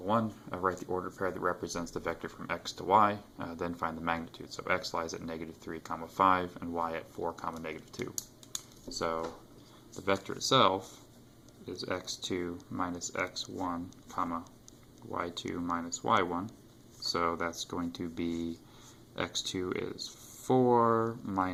1. Write the ordered pair that represents the vector from x to y, then find the magnitude. So x lies at negative 3, comma 5, and y at 4, comma negative 2. So the vector itself is x2 minus x1, comma y2 minus y1. So that's going to be x2 is 4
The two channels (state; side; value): identical; both; correlation 1.00